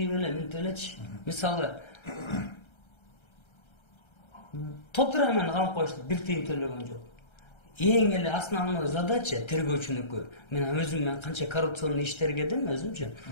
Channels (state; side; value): late; right; 1.3 ms